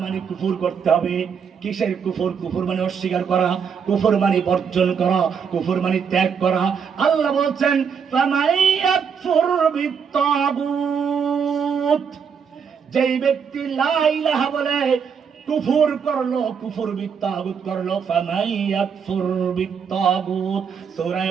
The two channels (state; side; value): quieter; left; 6.7 dB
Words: মানে কুফর করতে হবে। কিসের কুফর? কুফর মানে অস্বীকার করা, কুফর মানে বর্জন করা, কুফর মানে ত্যাগ করা। আল্লাহ বলছেন ফামাইয়াকফুর বিত্তাগুত, যেই ব্যক্তি লা ইলাহা বলে কুফর করলো, কুফর বিত্তাগুত করলো। ফামাইয়াকফুর বিত্তাগুত, সূরা